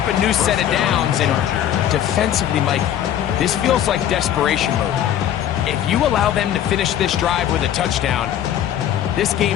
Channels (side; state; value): right; quieter; 10.8 dB